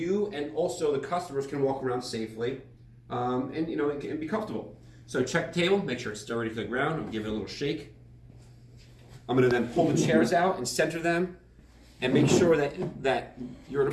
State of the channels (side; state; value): both; identical; correlation 1.00